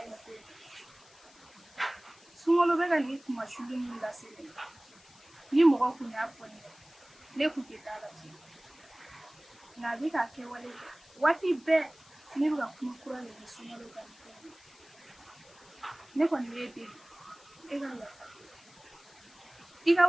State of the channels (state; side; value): noise; left; hiss, 25 dB below the sound